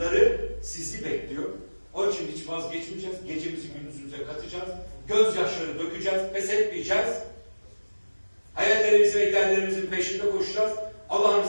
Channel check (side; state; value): both; inverted; correlation -1.00